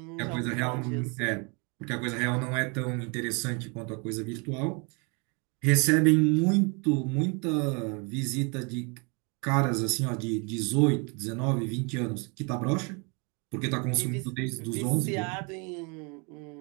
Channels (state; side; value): quieter; left; 32.9 dB